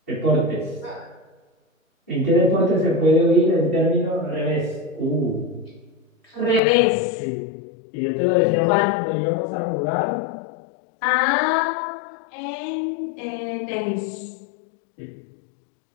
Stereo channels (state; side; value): drops out; right; at 6.6 s